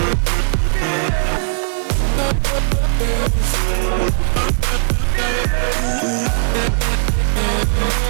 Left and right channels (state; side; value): silent; left; 59 dB below the other